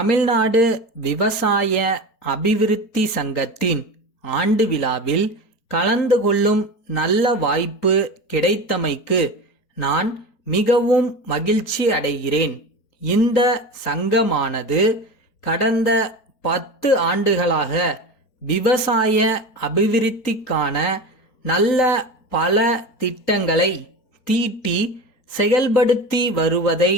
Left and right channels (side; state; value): right; late; 4.3 ms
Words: விவசாய அபிவிருத்தி சங்கத்தின் ஆண்டு விழாவில் கலந்து கொள்ளும் நல்ல வாய்ப்பு கிடைத்தமைக்கு நான் மிகவும் மகிழ்ச்சி அடைகிறேன். இந்த சங்கமானது கடந்த 10 ஆண்டுகளாக விவசாய அபிவிருத்திக்கான நல்ல பல திட்டங்களை தீட்டி செயல்படுத்தி வருவதை